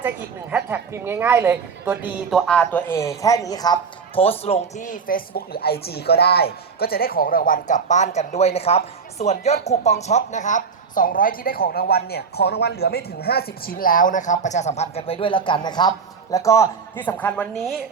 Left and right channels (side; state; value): left; quieter; 5.6 dB